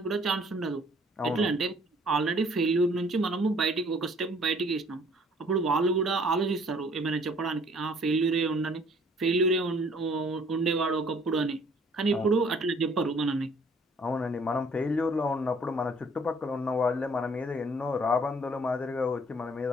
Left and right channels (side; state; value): both; normal; correlation 0.58